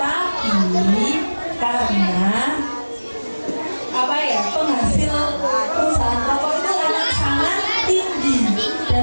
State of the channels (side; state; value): both; inverted; correlation -1.00